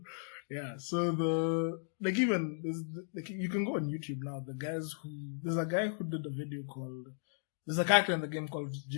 Yeah, so you can go on YouTube now. There's a guy who did a video there's a character in the game called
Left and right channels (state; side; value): silent; right; digital silence